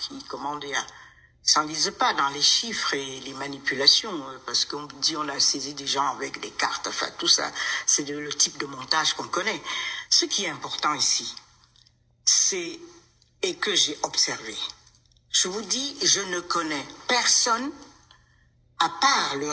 s'enlise pas dans les chiffres et les manipulations, parce qu'on dit on a saisi des gens avec des cartes, enfin tout ça, c'est le type de montage qu'on connaît. Ce qui est important ici, c'est, et que j'ai observé, je vous dis, je ne connais personne, à part le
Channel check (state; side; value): identical; both; correlation 1.00